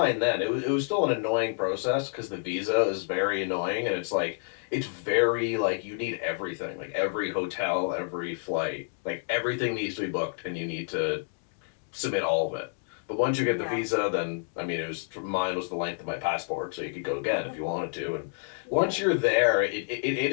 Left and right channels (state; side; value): silent; right; digital silence